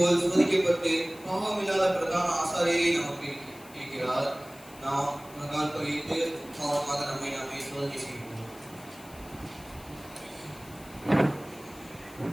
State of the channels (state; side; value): noise; left; hiss, 21 dB below the sound